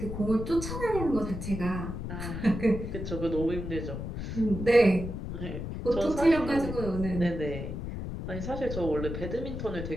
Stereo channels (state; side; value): noise; left; rumble, 6 dB below the sound